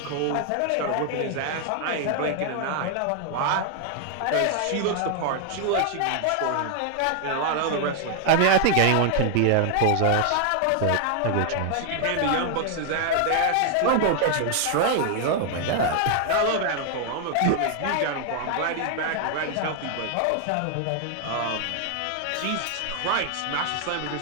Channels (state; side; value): different; both; correlation 0.00